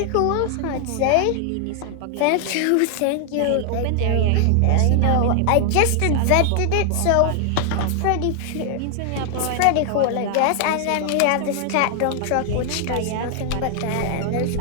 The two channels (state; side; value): different; both; correlation 0.00